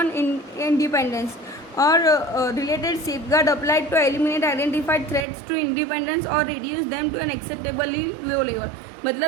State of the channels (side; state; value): left; drops out; at 5.2 s